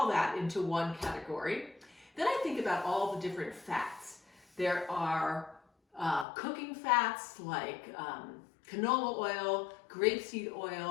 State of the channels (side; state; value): right; drops out; at 6.2 s